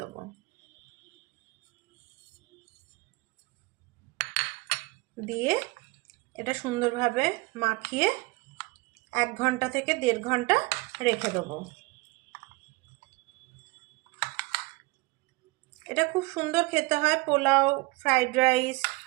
দেবো। দিয়ে এটা সুন্দরভাবে মাখিয়ে 1 ঘন্টা থেকে 1.5 ঘন্টা রেখে দেবো। এটা খুব সুন্দর খেতে হয় পোলাও, ফ্রাইড রাইস,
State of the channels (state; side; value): quieter; left; 23.9 dB